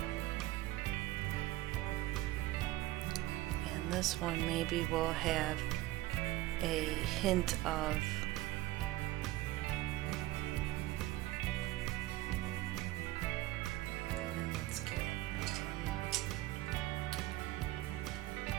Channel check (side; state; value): left; quieter; 17.1 dB